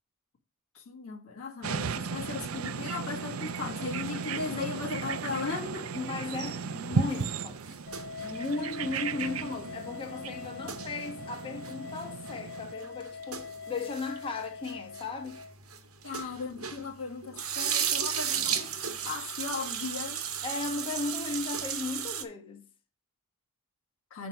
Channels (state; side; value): normal; both; correlation 0.16